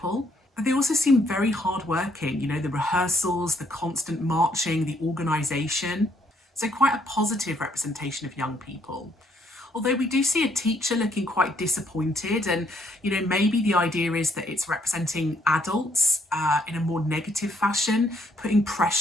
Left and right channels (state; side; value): normal; both; correlation 0.69